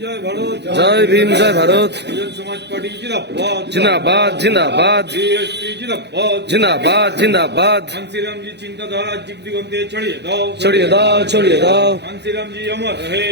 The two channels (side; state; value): left; late; 0.50 ms